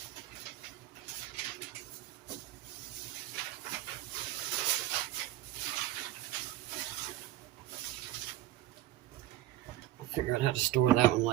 Figure out how to store that one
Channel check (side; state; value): left; quieter; 15.0 dB